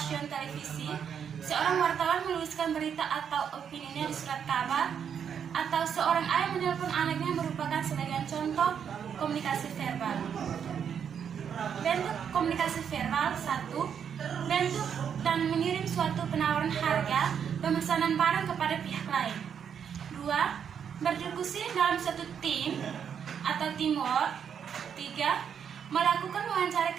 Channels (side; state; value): left; quieter; 7.8 dB